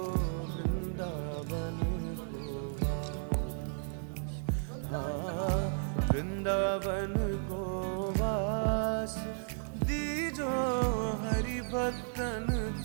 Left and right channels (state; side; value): silent; left; 55 dB below the other